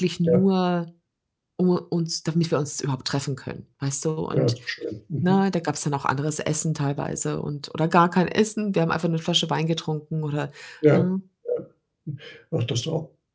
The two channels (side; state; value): both; identical; correlation 1.00